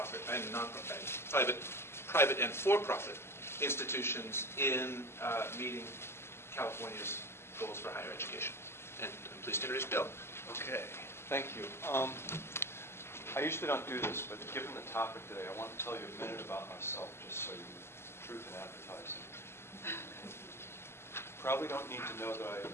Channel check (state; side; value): late; right; 0.12 ms